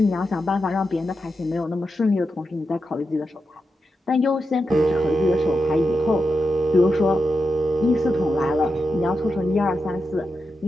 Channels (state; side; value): normal; both; correlation 0.88